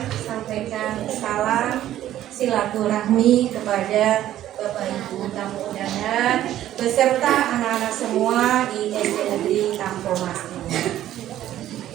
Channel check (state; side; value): quieter; left; 12.7 dB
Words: sampaikan salam silaturahmi kepada Bapak Ibu tamu undangan beserta anak-anak semua di SD Negeri Tampomas ini.